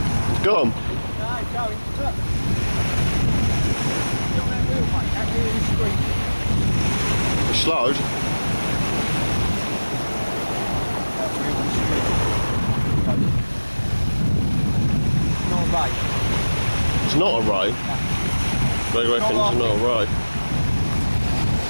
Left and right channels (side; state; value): both; inverted; correlation -1.00